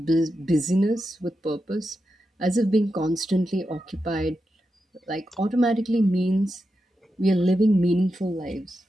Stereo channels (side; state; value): both; normal; correlation 0.88